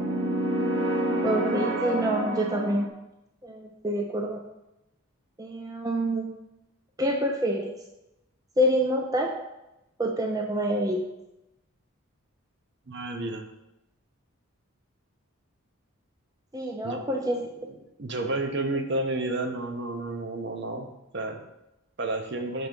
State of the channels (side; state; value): both; normal; correlation 0.35